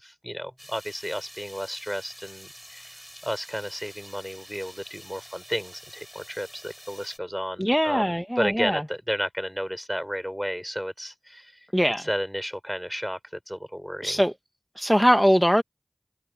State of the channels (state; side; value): identical; both; correlation 1.00